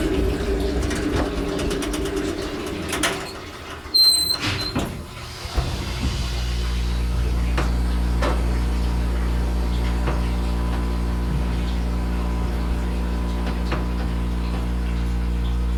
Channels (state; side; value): identical; both; correlation 1.00